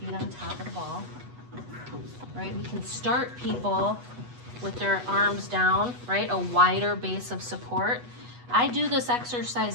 on top of the ball. Right? We can start people with their arms down, right? A wider base of support. I do this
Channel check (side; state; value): left; late; 8.2 ms